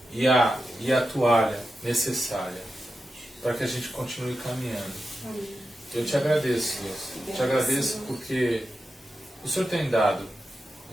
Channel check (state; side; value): normal; both; correlation 0.90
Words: e a toalha necessária para que a gente continue caminhando. Eu te agradeço, Deus. Te agradeço porque o Senhor tem dado